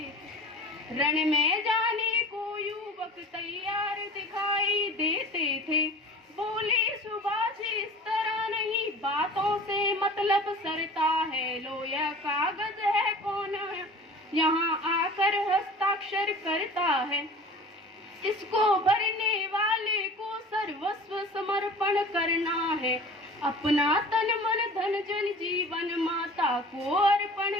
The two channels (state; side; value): normal; both; correlation 0.41